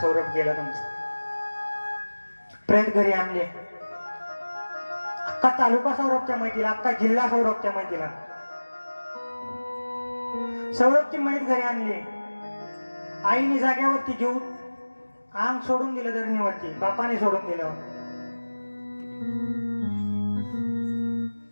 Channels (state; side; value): inverted; both; correlation -1.00